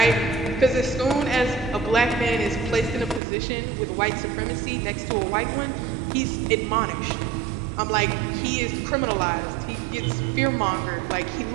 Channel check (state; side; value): drops out; left; at 3.2 s